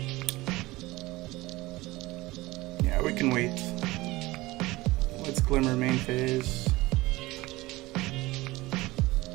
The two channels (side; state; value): left; quieter; 20.0 dB